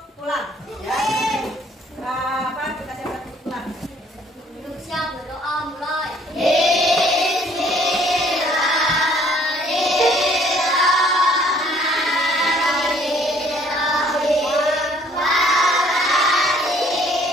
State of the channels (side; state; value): both; normal; correlation 0.60